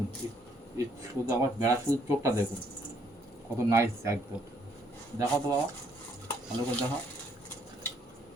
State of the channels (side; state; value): both; normal; correlation 0.68